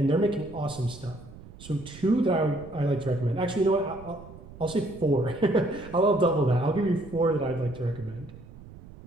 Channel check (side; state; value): right; noise; rumble, 18 dB below the sound